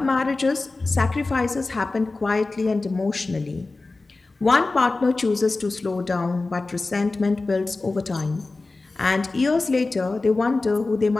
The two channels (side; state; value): right; quieter; 3.4 dB